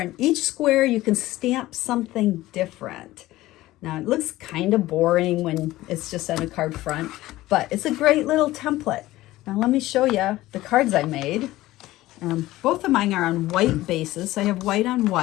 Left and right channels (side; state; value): right; quieter; 16.8 dB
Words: each square you can stamp something different. Now it looks kind of boring when it's just on a card front, but it's a great little template. Now let me show you the cards I made. Both of mine are on white bases. So I have white on